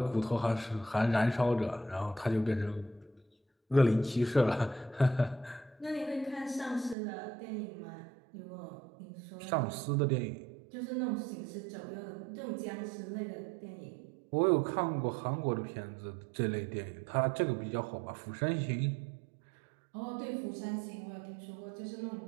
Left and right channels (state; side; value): drops out; left; at 7.0 s